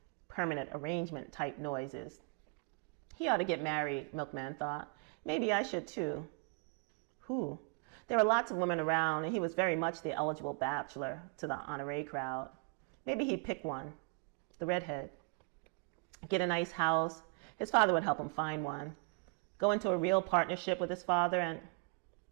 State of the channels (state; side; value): quieter; left; 33.8 dB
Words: permanent arrangement type noises. He ought to get married, Milkman thought. Maybe I should too. Who? There were lots of women around, and he was very much the eligible bachelor to the honoree crowd. Maybe he'd pick one, the redhead. Get a nice house. His father would help him find one. Go into a real partnership with his father